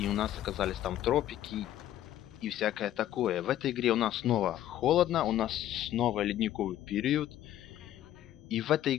у нас оказались там тропики и всякое такое. В этой игре у нас снова холодно, у нас снова ледниковый период. И в этой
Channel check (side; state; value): right; quieter; 12.5 dB